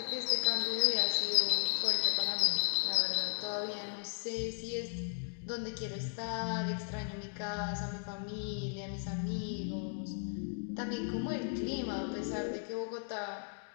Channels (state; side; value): silent; right; digital silence